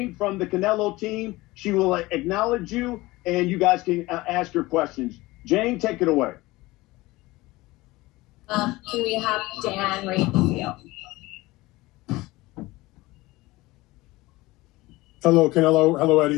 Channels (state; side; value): quieter; right; 20.2 dB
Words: from the Canelo team, she will acknowledge you, and you guys can ask your questions. Jane, take it away. Can we have Dan Radio? Hello, Canelo. Hello,